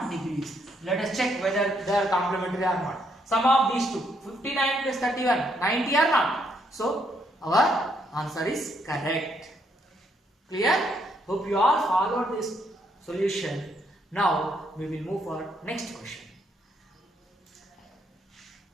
degrees. Let us check whether they are complementary or not. Sum of these two, 59 plus 31, 90 or not. So, our answer is correct. Clear? Hope you all followed this solution. Now, we will move for next question.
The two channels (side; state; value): both; normal; correlation 0.73